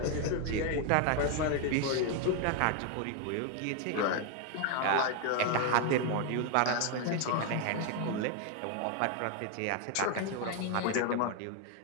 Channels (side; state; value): both; different; correlation 0.01